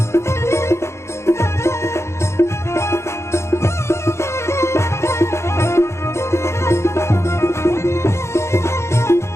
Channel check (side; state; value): right; late; 0.13 ms